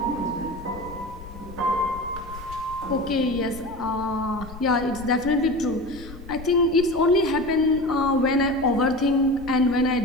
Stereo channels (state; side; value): noise; left; rumble, 15 dB below the sound